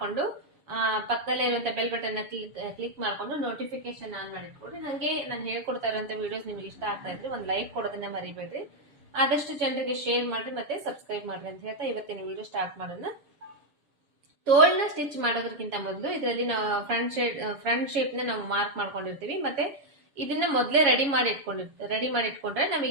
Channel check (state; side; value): late; left; 7.1 ms